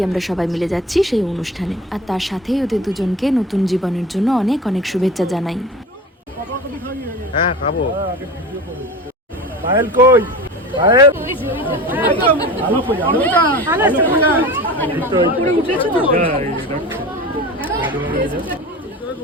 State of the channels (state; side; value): normal; both; correlation 0.34